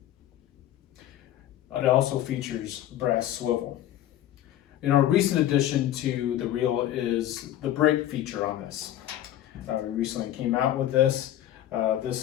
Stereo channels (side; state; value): right; quieter; 12.6 dB